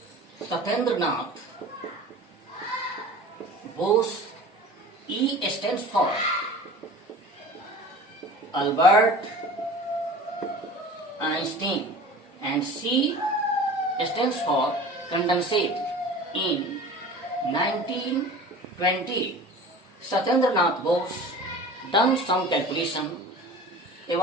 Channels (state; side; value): normal; both; correlation 0.40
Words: Satyendranath Bose. E stands for Albert Einstein, and C stands for condensate. In 1920, Satyendranath Bose done some calculation